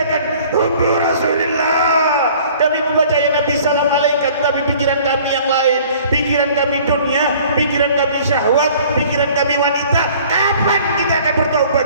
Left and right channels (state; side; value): inverted; both; correlation -0.52